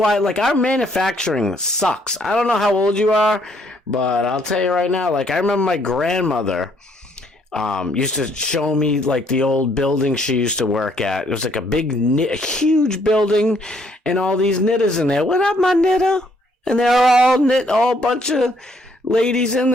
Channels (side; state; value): both; normal; correlation 0.67